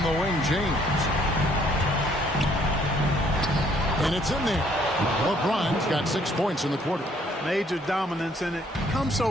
the wing, James. And it's in there. LeBron's got 6 points in the quarter. Major dominance, and it comes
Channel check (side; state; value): both; normal; correlation 0.64